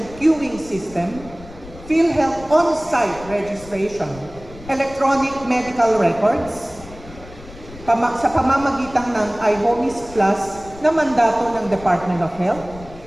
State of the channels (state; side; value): noise; left; rumble, 18 dB below the sound